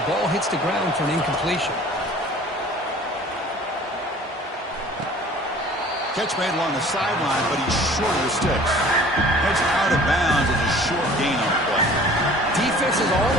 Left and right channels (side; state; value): both; normal; correlation 0.48